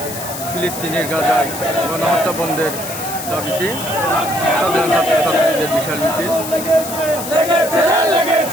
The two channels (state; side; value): noise; left; hiss, 9 dB below the sound